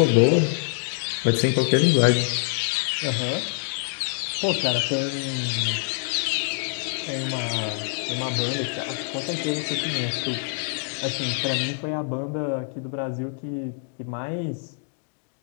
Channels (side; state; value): right; silent; digital silence